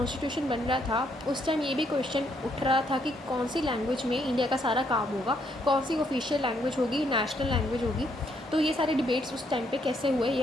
बन रहा था उस टाइम ये भी क्वेश्चन उठ रहा था कि कौन सी लैंग्वेज में इंडिया का सारा काम होगा, कौन सी ऑफिशियल लैंग्वेज होगी, नेशनल लैंग्वेज होगी। तो ये सारे डिबेट्स उस टाइम पे कैसे हुए ये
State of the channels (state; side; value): normal; both; correlation 0.72